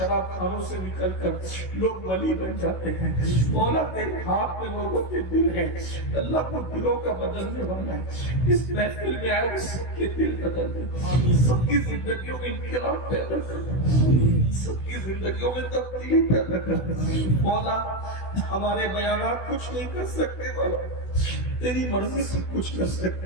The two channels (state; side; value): late; right; 16 ms